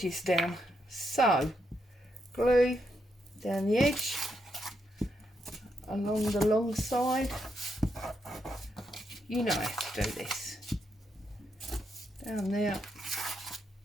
down. So glue down the edge along the long side. You know how to do this. Down there.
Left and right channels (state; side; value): normal; both; correlation 0.80